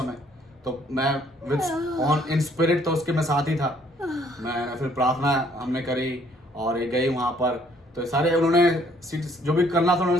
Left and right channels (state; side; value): normal; both; correlation 0.63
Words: तो मैं विद इन स्पिरिट तो उसके मैं साथ ही था। मैं फिर प्रार्थना हमने करी, और ये गई वहां पर, तो सारे उन्होंने जो भी करना था